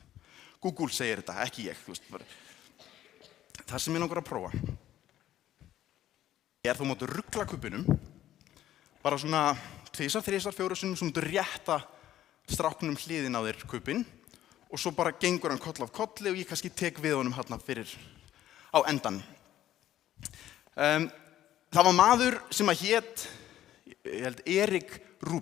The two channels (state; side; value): quieter; right; 12.6 dB